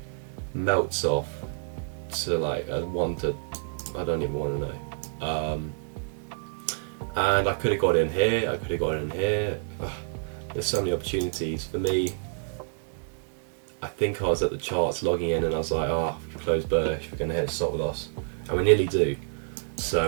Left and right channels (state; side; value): silent; left; digital silence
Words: melts off to like a 1 to, I don't even want to know. And I could have got in here, I could have got in here. There's so many opportunities. For me, I think I was at the charts logging in and I was like, we've closed bullish, we're going to hit a stop loss. And we nearly do.